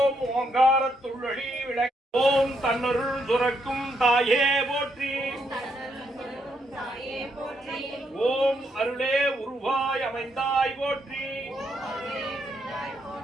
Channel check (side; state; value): both; normal; correlation 0.76